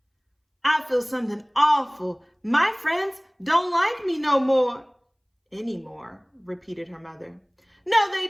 I feel something awful. My friends don't like me no more. Anymore, repeated her mother. No, they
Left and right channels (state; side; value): identical; both; correlation 1.00